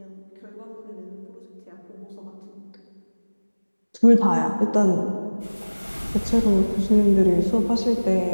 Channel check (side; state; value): both; inverted; correlation -1.00